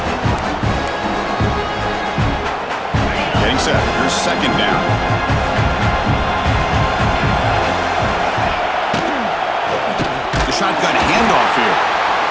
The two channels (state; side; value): identical; both; correlation 1.00